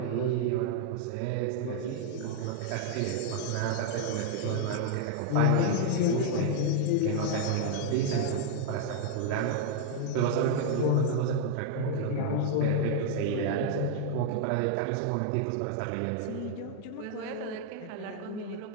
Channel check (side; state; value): both; different; correlation 0.00